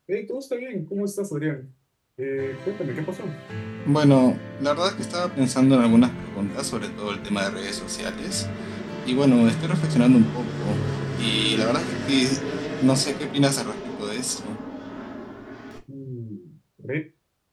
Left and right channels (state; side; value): identical; both; correlation 1.00